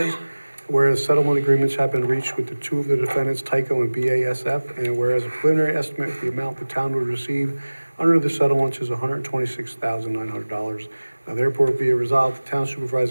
whereas settlement agreements have been reached with the two of the defendants, Tyco and BASF, and whereas a preliminary estimate of the amount the town would receive under the settlements is $126,900. Now therefore be it resolved, the town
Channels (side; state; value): both; inverted; correlation -1.00